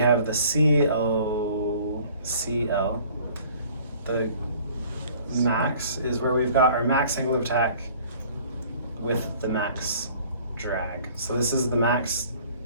the CL. The max is where we've got our max angle of attack with the max drag. So this is the max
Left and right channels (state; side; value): inverted; both; correlation -0.53